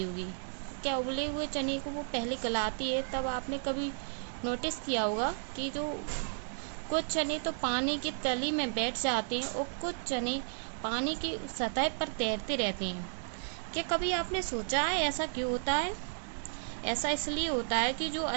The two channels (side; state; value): left; silent; digital silence